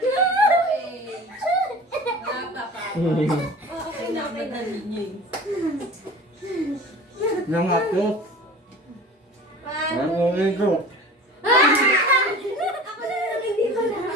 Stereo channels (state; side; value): normal; both; correlation 0.40